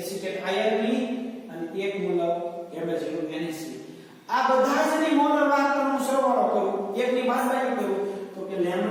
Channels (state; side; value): identical; both; correlation 1.00